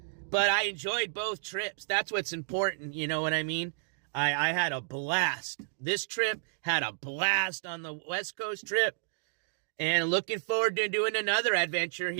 But I enjoyed both trips. That's what's important. You know what I mean? I had a blast. This trip had a blast on the West Coast trip. And looking forward to doing another adventure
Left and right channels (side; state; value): left; silent; digital silence